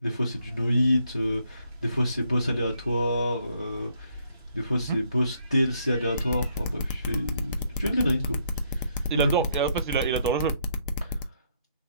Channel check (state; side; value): inverted; both; correlation -0.72